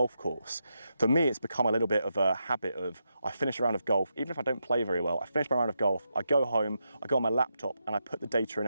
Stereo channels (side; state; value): both; inverted; correlation -0.85